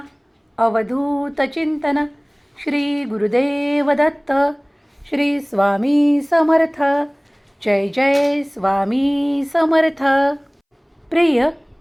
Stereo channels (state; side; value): identical; both; correlation 1.00